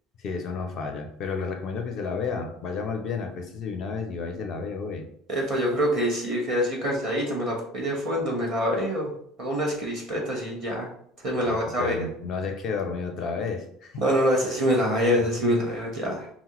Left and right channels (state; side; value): normal; both; correlation 0.43